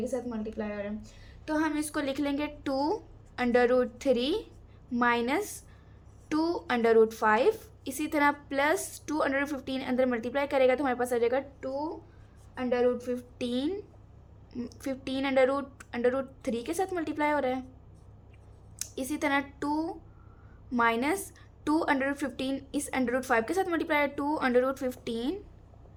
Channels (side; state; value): both; identical; correlation 1.00